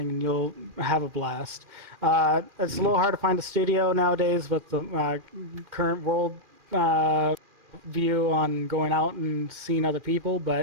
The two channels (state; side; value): late; left; 2.4 ms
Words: and you'll have a blast. It's a little hard to find a studio nowadays with the current world view on going out and seeing other people,